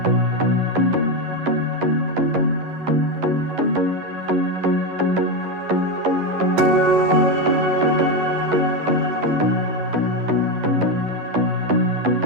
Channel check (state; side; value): late; left; 11 ms